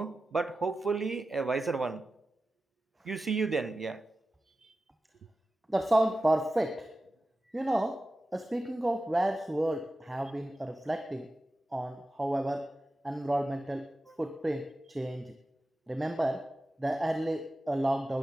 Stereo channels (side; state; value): both; normal; correlation 0.94